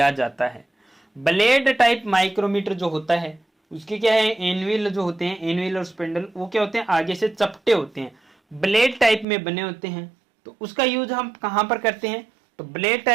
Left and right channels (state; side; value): drops out; left; at 9.2 s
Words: जाता है। ब्लेड टाइप माइक्रोमीटर जो होता है उसके क्या है, एनविल जो होते हैं, एनविल और स्पिंडल वो क्या होते हैं, आगे से चपटे होते हैं, ब्लेड टाइप में बने होते हैं। तो उसका यूज हम कहां पर करते हैं, तो ब्लेड